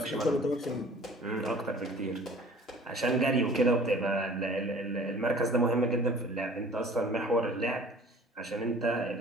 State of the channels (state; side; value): normal; both; correlation 0.48